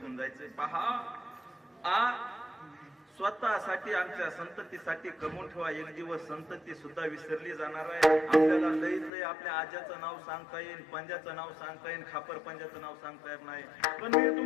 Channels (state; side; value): drops out; right; at 9.1 s